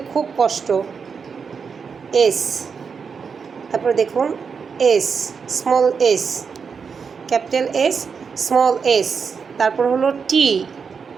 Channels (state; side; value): quieter; left; 5.9 dB